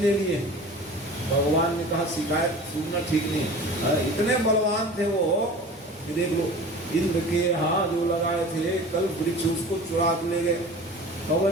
लिए। भगवान ने कहा शिकायत सुनना ठीक नहीं। इतने बलवान थे वो, देख लो इंद्र के यहाँ जो लगाए थे कल वृक्ष, उसको चुरा के ले गए,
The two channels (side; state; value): both; normal; correlation 0.39